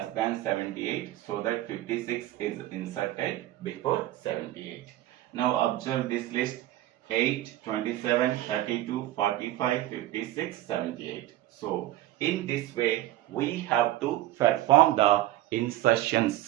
than 78, so that 56 is inserted before 78. Now observe this list: 8, 27, 32, 45, 56, 78. So in this way we have to perform the insertion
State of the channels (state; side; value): quieter; left; 14.9 dB